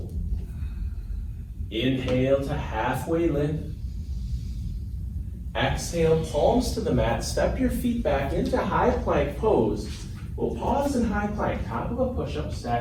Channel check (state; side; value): identical; both; correlation 1.00